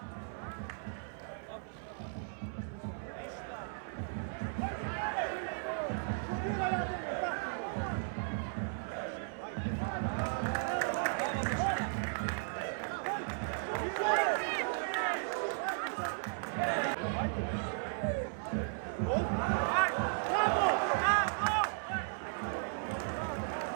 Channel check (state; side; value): silent; left; 54 dB below the other